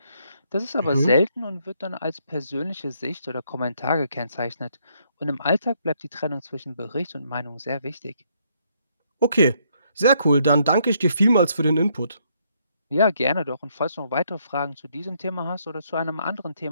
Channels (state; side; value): inverted; both; correlation -0.71